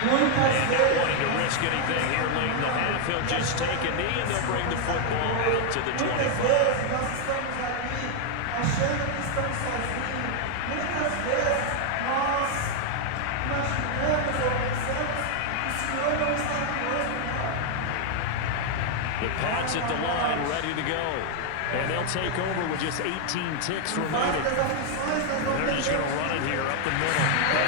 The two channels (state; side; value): different; both; correlation 0.00